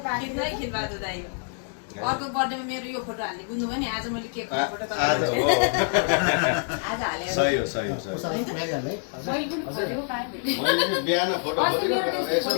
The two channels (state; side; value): silent; right; 60 dB below the other